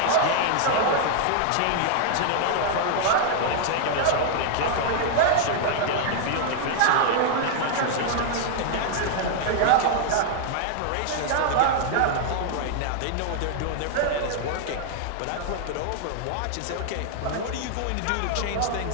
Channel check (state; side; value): different; both; correlation 0.00